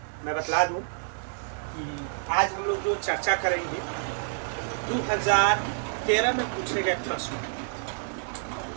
मैं बतला दूं कि आज हम लोग जो चर्चा करेंगे 2013 में पूछे गए प्रश्न।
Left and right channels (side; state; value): left; silent; digital silence